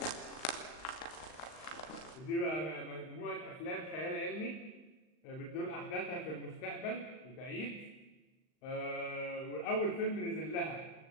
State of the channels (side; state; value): right; late; 39 ms